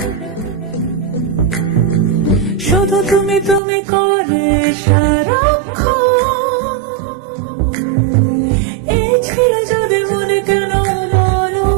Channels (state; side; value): drops out; left; at 3.6 s